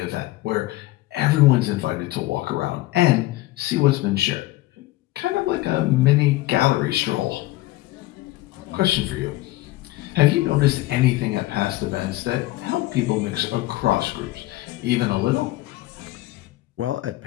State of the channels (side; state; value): right; quieter; 17.9 dB